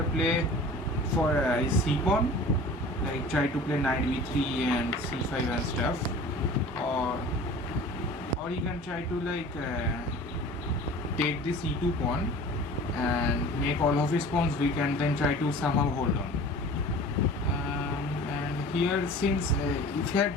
play for his c pawn, like try to play knight b3 and c5 and stuff, or he can try to like take this e2 pawn and make all of his pawns weak and then try to somehow hold on. And here, since if he had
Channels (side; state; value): both; normal; correlation 0.41